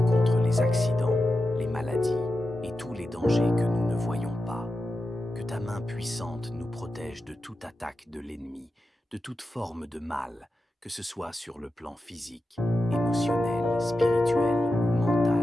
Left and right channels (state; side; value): normal; both; correlation 0.91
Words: contre les accidents, les maladies et tous les dangers que nous ne voyons pas. Que ta main puissante nous protège de toute attaque de l'ennemi, de toute forme de mal, que ce soit sur le plan physique, émotionnel, spirituel ou